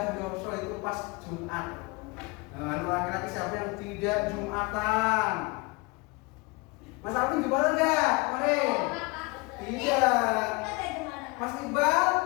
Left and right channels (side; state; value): right; quieter; 26.3 dB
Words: Yoso itu pas Jumat. Nah, laki-laki siapa yang tidak Jumatan? Mas Alvin Jumatan enggak? Kemarin? Tidak. Mas Iqbal?